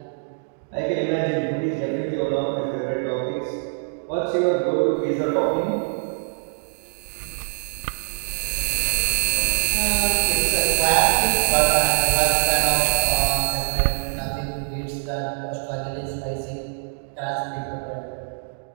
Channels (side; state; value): left; silent; digital silence